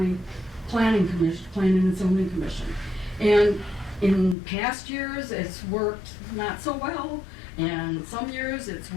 Planning and Zoning Commission. And in past years, it's worked not so well, and some years it's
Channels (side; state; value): right; drops out; at 4.4 s